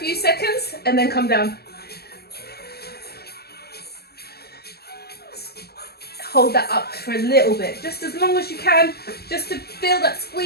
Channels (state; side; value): late; right; 0.46 ms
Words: seconds, and then come down. Hold that up for a little bit, just as long as you can, just to feel that